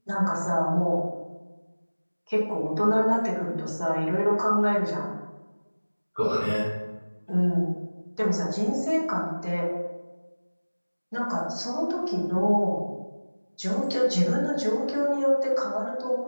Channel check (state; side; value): inverted; both; correlation -1.00